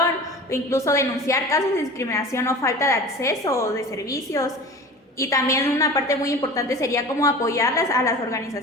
o incluso denunciar casos de discriminación o falta de acceso o de servicios. Y también una parte muy importante sería como apoyarlas a las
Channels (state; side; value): normal; both; correlation 0.37